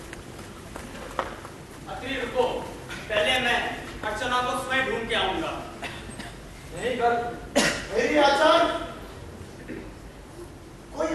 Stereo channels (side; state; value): both; identical; correlation 1.00